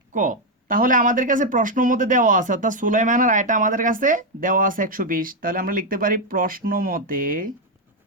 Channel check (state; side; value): normal; both; correlation 0.03